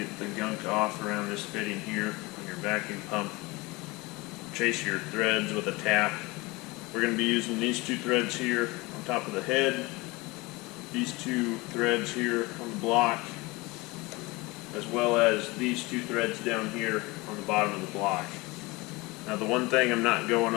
the gunk off around this fitting here on your vacuum pump. Chase your threads with a tap. We're going to be using these two threads here on top of the head, these two threads here on the block, as well as these two threads down here on the bottom of the block. Now the one thing I'm not going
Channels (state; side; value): quieter; right; 23.5 dB